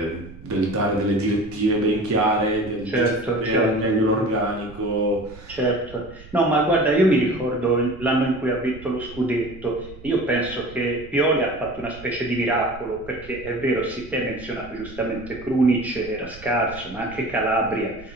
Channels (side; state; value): right; noise; rumble, 18 dB below the sound